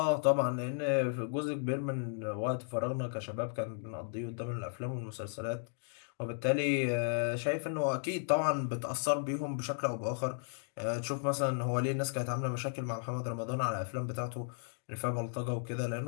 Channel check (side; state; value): right; silent; digital silence